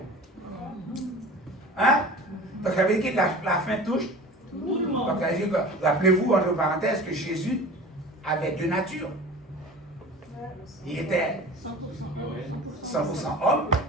Hein? Donc ça veut dire que la faim touche tout le monde. Rappelez-vous, entre parenthèses, que Jésus avait deux natures. Il était 100% homme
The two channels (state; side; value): normal; both; correlation 0.38